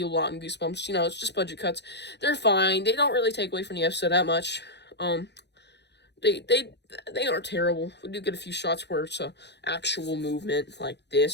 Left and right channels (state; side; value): late; right; 0.50 ms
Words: a lot in Goosebumps. You know, it's just budget cuts. They're fine. They don't really take away from the episode that much. They aren't terrible. We do get a few shots where it's a actual movement like